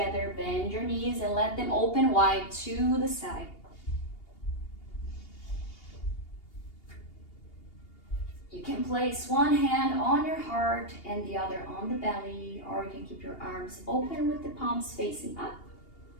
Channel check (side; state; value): right; late; 2.8 ms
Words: bend your knees and let them open wide to the side. You can place one hand on your heart and the other on the belly, or you can keep your arms open with the palms facing up.